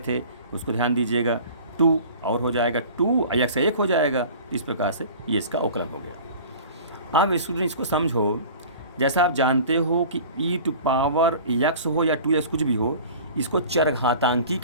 उसको ध्यान दीजिएगा। 2 और हो जाएगा 2 और एक्स 1 हो जाएगा। इस प्रकार से ये इसका अवकलन हो गया। अब स्टूडेंट इसको समझो, जैसा आप जानते हो कि ई टू पावर एक्स हो या 2x कुछ भी हो, इसको चरघातांकी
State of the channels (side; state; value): both; inverted; correlation -0.42